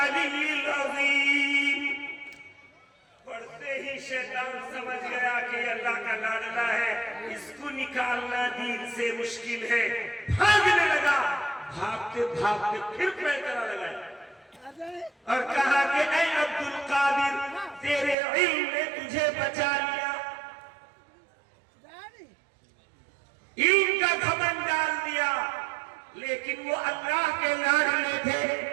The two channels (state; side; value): drops out; left; at 18.2 s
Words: العظیم. پڑھتے ہی شیطان سمجھ گیا کہ اللہ کا لاڈلا ہے, اس کو نکالنا دین سے مشکل ہے, بھاگنے لگا. بھاگتے بھاگتے پھر پیکرا لگایا اور کہا کہ اے عبد القادر تیرے علم نے تجھے بچا لیا, علم کا گھمنڈ ڈال دیا, لیکن وہ اللہ کے لاڈلے تھے,